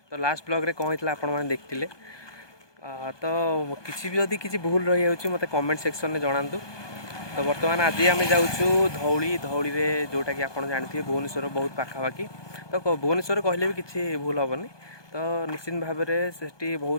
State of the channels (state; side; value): late; right; 1.2 ms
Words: तो लास्ट ब्लॉग रे कौन होता आपण मैंने देखते तो किसी भी जदि किसी भूल रही है मत कमेंट सेक्शन में जनातु। तो बर्तमान आज आम जाऊँ धौली धौली रे जोटा कि आप जानते भुवनेश्वर बहुत पाखापाखि। तो भुवनेश्वर कहले भी किसी भूल हेनी। तो निश्चित भाव में से